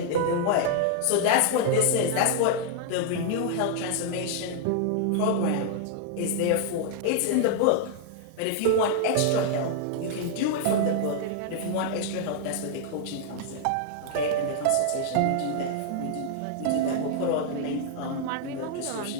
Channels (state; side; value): different; both; correlation -0.01